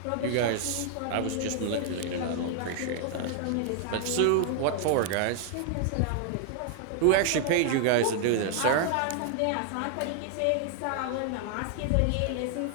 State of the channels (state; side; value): different; both; correlation 0.00